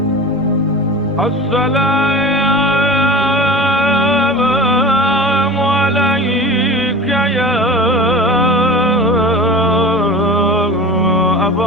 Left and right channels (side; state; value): left; noise; rumble, 28 dB below the sound